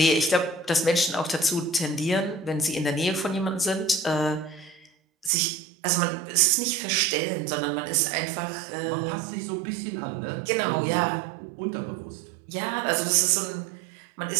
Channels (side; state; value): left; drops out; at 5.3 s